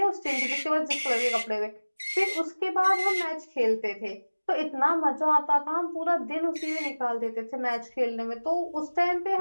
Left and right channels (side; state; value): both; inverted; correlation -1.00